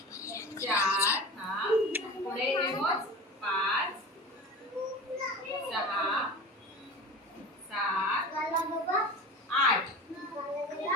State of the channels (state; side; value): normal; both; correlation 0.33